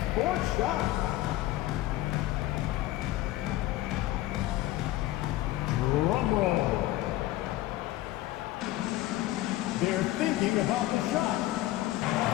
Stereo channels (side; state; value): right; quieter; 16.2 dB